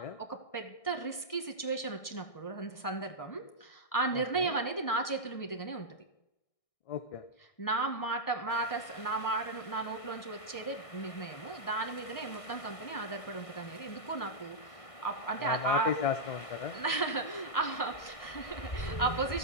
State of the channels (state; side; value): late; right; 1.6 ms